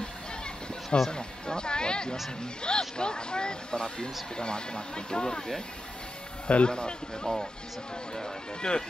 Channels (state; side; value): normal; both; correlation 0.90